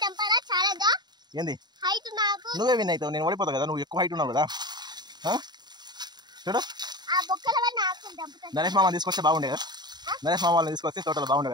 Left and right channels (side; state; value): left; late; 0.21 ms